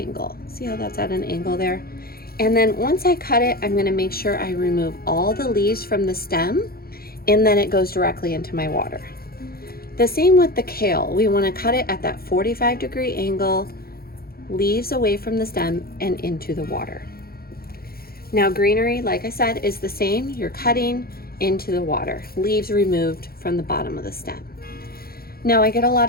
See how that's at an angle there? And then once I cut it, I'm going to make sure I remove all the leaves from the stem, and then it goes directly into my water. The same with the kale. We want to cut it at that 45-degree angle, leaves away from the stem and into the water. Now greenery, like I said, is the same. You're cutting into the water, leaves removed from the bottom of the stem. Now I get a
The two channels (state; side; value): late; right; 0.44 ms